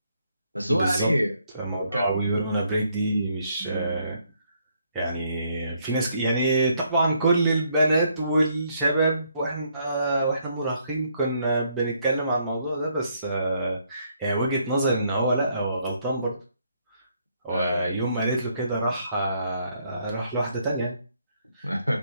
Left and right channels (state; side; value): inverted; both; correlation -0.71